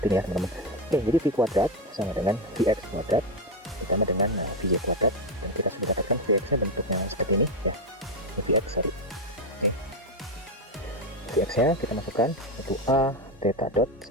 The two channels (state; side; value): normal; both; correlation 0.09